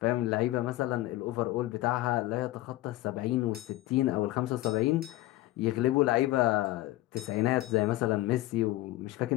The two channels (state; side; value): quieter; right; 17.1 dB